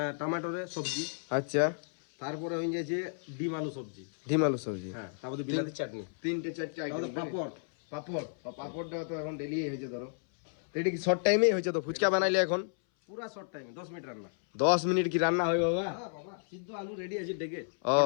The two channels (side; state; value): right; silent; 56 dB below the other